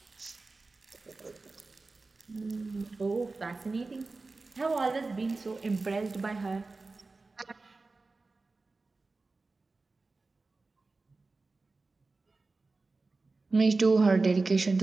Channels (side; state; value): left; quieter; 3.6 dB